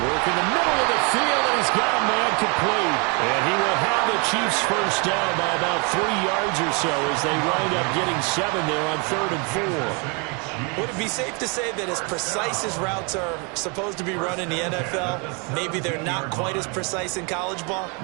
in the middle of the field, and he's got a man complete. And he will have the Chiefs first down by about 3 yards or so as they wind up getting 7 there on 3rd and 4. Would it be safe to say that as precise as routes are supposed to be run in the NFL, maybe they're not quite as precise in college ball?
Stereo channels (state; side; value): quieter; left; 33.3 dB